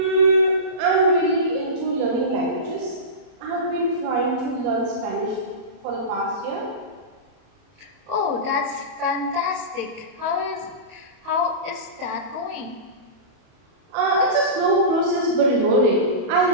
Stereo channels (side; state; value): left; late; 31 ms